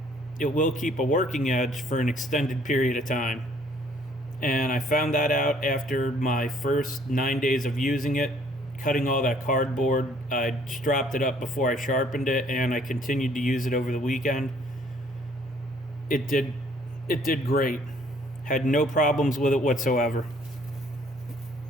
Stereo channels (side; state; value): both; normal; correlation 0.60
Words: it will keep a working edge for an extended period of time. And I found that out after my first 9 days of using it, cutting all that cardboard. I stropped it up before I sharpened it, and I continued to use it over the weekend. It did great. Had no problems with it whatsoever.